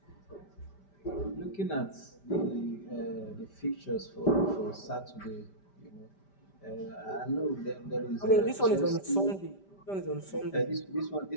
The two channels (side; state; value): right; late; 5.1 ms